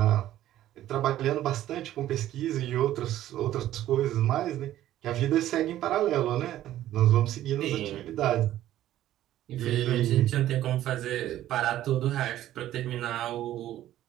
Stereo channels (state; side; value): quieter; left; 13.2 dB